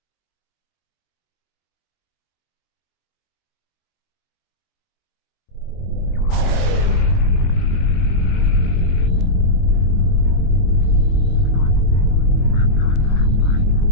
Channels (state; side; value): late; right; 22 ms